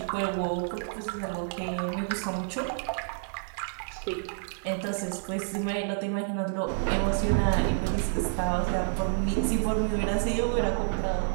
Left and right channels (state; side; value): silent; left; 59 dB below the other